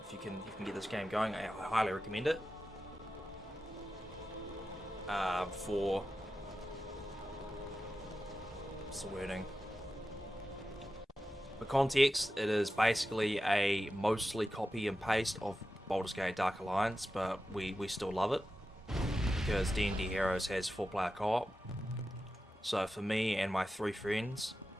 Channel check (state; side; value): normal; both; correlation 0.92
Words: if you can get this game going, I highly recommend it. For what's the wording? For context, it is basically a mostly copy and paste of Baldur's Gate Dark Alliance, but we still love it because D&D Heroes has 4-player co-op. So for me and my 3 friends,